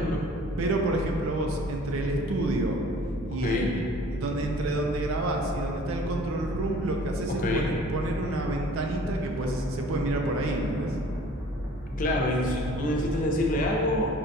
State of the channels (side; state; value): both; normal; correlation 0.50